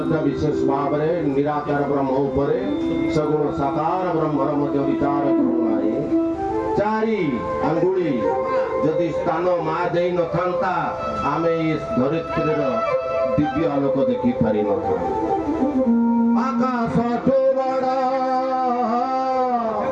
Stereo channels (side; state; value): both; identical; correlation 1.00